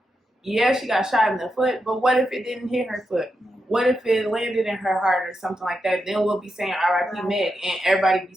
yeah, she got shot in the foot, but what if it didn't hit her foot? What if it landed in her heart or something like that? Then we'll be saying R.I.P. Meg, and everybody be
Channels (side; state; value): both; normal; correlation 0.86